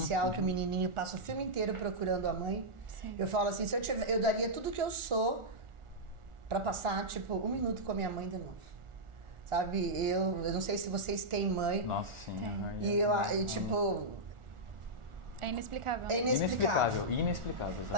que o menininho passa o filme inteiro procurando a mãe. Sim. Eu falo assim, eu daria tudo que eu sou para passar, tipo, 1 minuto com a minha mãe de novo. Sabe? Eu não sei se vocês têm mãe. Nossa, sim. E tipo... É inexplicável. É inexplicável. Inexplicável.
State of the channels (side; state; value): left; late; 1.4 ms